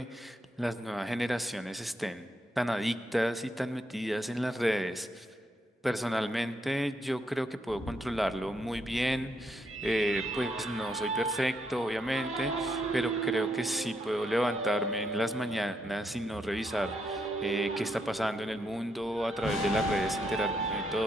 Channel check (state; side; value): normal; both; correlation 0.78